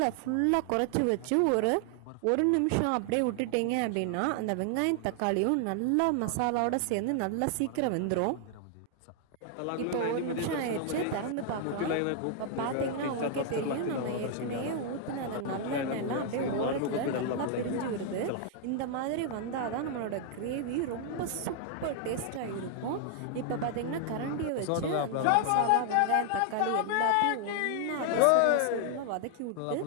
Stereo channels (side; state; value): both; different; correlation 0.00